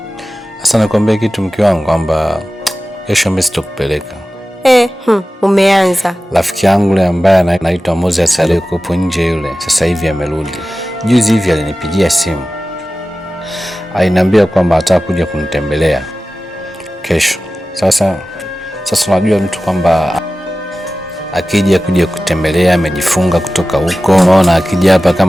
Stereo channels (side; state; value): both; normal; correlation 0.95